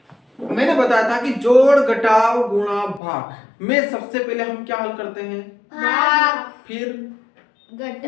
मैंने बताया था कि जोड़ घटाव गुणा भाग में सबसे पहले हम क्या हल करते हैं? भाग, फिर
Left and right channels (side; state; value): right; drops out; at 3.0 s